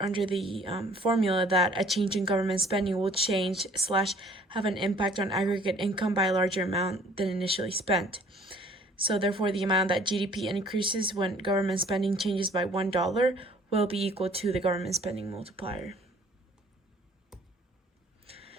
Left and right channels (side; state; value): both; normal; correlation 0.55